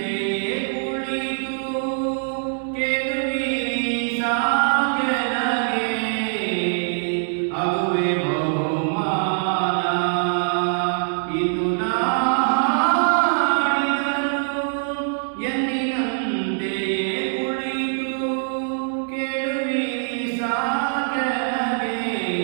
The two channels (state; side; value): silent; left; 63 dB below the other